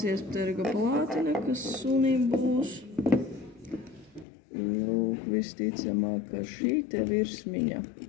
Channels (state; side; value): drops out; right; at 4.2 s